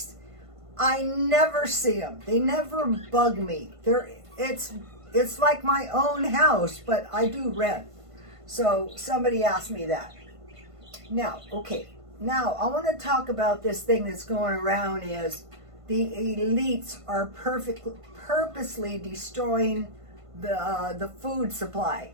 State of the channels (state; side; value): late; left; 1.5 ms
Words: I never see them. They never bug me. It's like my own house, but I do rent. So somebody asked me that. Now, okay. Now I want to talk about this thing that's going around is the elites are purposely destroying the food supply.